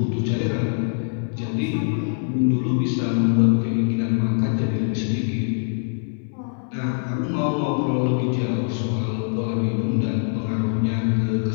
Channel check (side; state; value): right; silent; digital silence